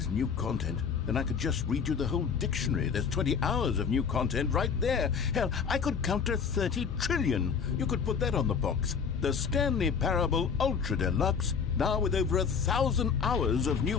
new content, then I could just read you the whole dictionary. There's 20 hours of new content right there. Hell, I could count to 30 trillion. You could put that on the box. The Stanley Parable Ultra Deluxe, now with over 1,000 hours of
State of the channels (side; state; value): right; quieter; 6.3 dB